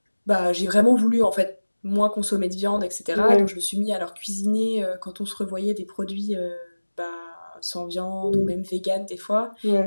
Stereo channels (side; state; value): both; inverted; correlation -1.00